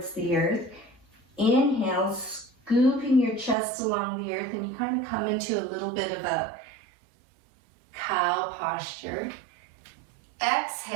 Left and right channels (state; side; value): drops out; left; at 3.6 s